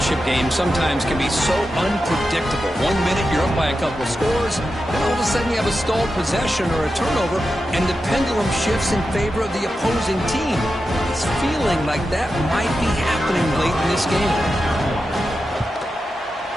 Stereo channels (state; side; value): normal; both; correlation 0.90